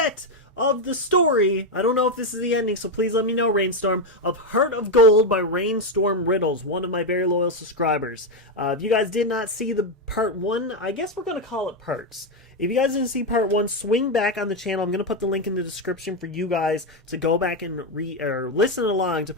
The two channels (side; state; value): both; normal; correlation 0.07